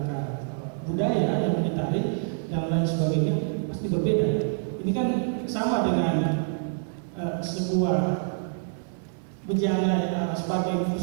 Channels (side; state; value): left; silent; digital silence